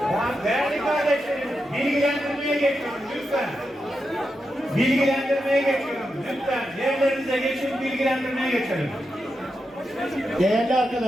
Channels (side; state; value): both; normal; correlation 0.87